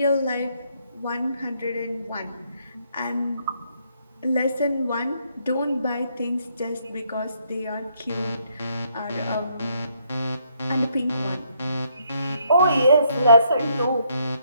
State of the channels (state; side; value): inverted; both; correlation -0.72